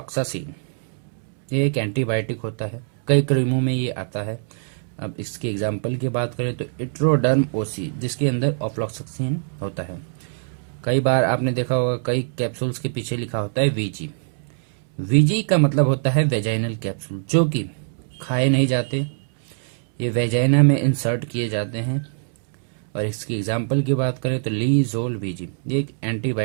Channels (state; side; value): silent; left; 63 dB below the other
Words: ये एक एंटीबायोटिक होता है, कई क्रीमों में ये आता है। अब इसके एग्जाम्पल की बात करें तो इट्रोडर्म OC, जिसके अंदर ऑफ्लॉक्सासिन होता है। कई बार आपने देखा होगा कई कैप्सूल्स के पीछे लिखा होता है VG। VG का मतलब होता है वेजाइनल कैप्सूल, जो कि खाए नहीं जाते, ये वेजाइना में इंसर्ट किए जाते हैं। और इसकी एग्जाम्पल की बात करें तो लीजोल VG, ये एक